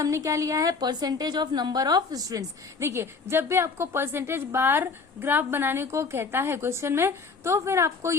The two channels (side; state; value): right; quieter; 4.7 dB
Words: क्या लिया है, percentage of number of students. देखिए जब भी आपको परसेंटेज बार ग्राफ बनाने को कहता है क्वेश्चन में, तो फिर आपको